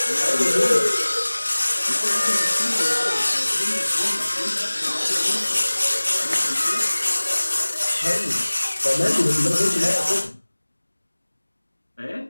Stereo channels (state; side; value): inverted; both; correlation -1.00